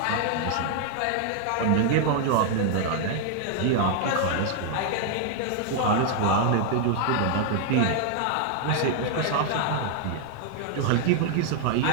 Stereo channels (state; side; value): different; both; correlation 0.00